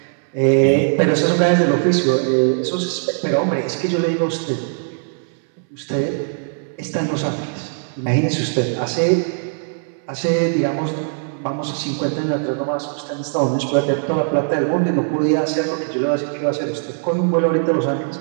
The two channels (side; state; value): left; silent; digital silence